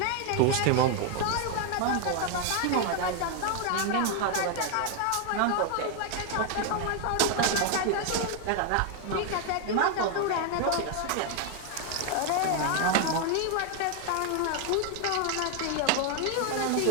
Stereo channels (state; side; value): different; both; correlation 0.00